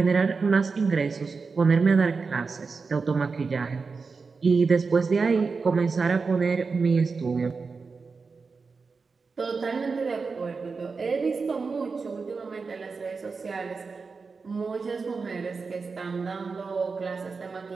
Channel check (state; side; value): quieter; left; 4.7 dB